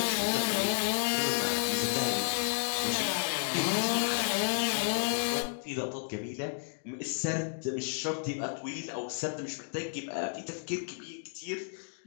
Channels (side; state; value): right; silent; digital silence